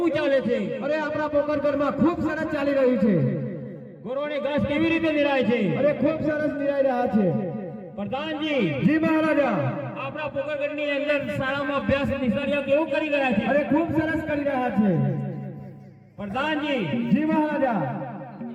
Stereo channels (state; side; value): identical; both; correlation 1.00